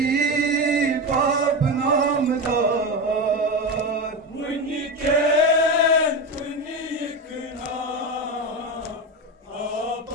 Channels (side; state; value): both; normal; correlation 0.19